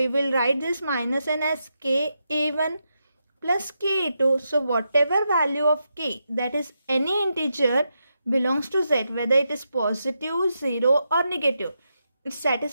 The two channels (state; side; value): inverted; both; correlation -0.85